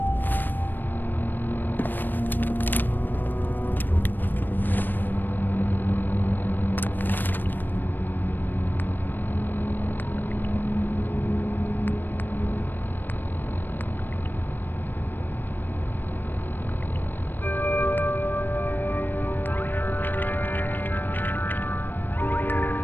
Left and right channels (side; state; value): right; late; 0.092 ms